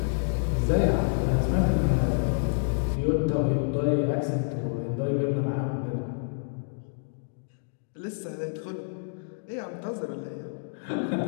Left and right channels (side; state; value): right; silent; digital silence